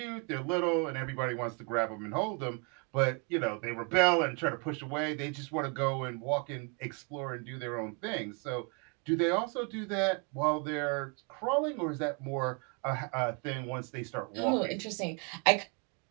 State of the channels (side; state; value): left; quieter; 34.7 dB